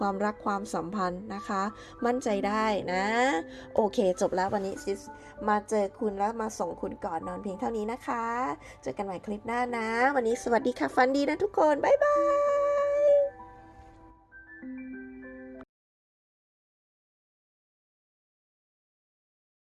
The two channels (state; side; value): identical; both; correlation 1.00